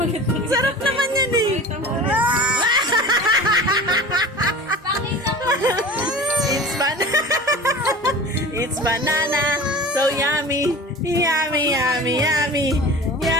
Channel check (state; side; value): normal; both; correlation 0.37